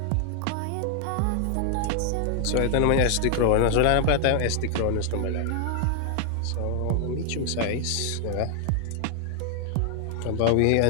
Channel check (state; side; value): different; both; correlation 0.00